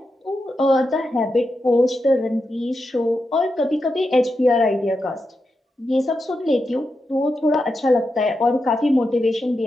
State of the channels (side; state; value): both; normal; correlation 0.87